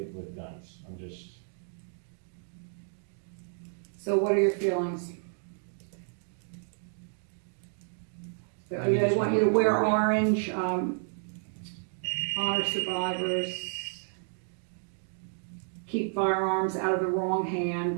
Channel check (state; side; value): silent; left; 57 dB below the other